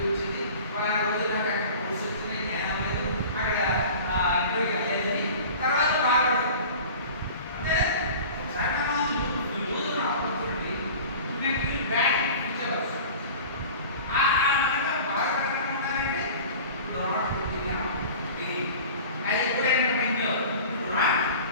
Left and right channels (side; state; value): both; inverted; correlation -0.40